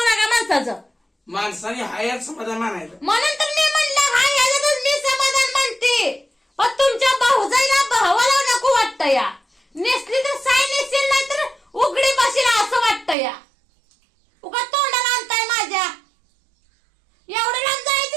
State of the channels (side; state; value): left; drops out; at 13.2 s